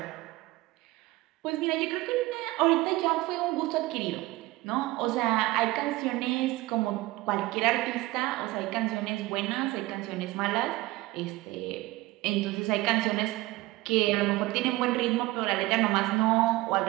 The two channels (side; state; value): left; quieter; 19.4 dB